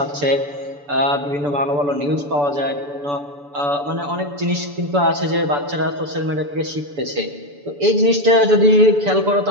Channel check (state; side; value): late; left; 6.9 ms